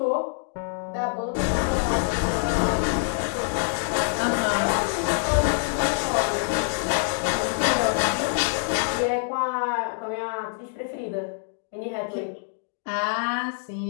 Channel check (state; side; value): silent; right; 61 dB below the other